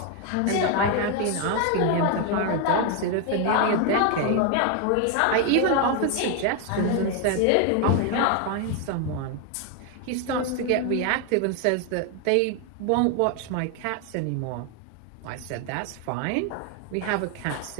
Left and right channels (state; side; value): different; both; correlation 0.01